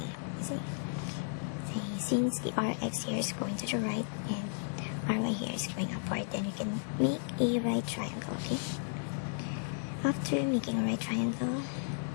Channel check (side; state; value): right; silent; digital silence